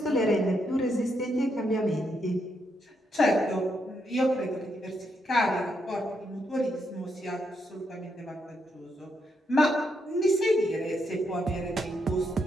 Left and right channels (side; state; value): both; normal; correlation 0.79